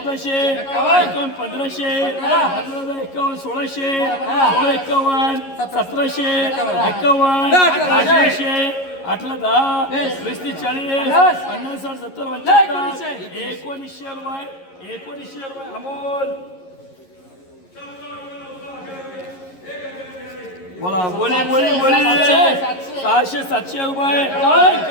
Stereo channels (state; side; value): late; right; 11 ms